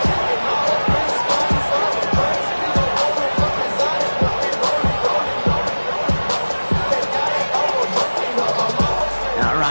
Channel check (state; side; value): inverted; both; correlation -1.00